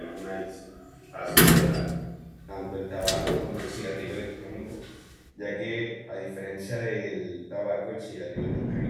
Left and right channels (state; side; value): identical; both; correlation 1.00